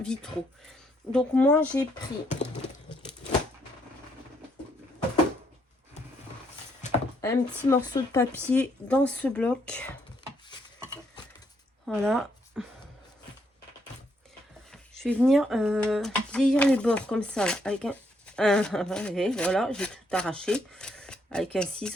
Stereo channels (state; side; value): normal; both; correlation 0.73